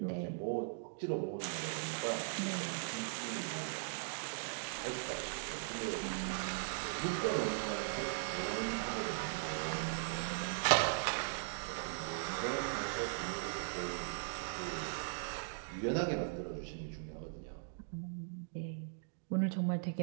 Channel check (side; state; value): left; silent; digital silence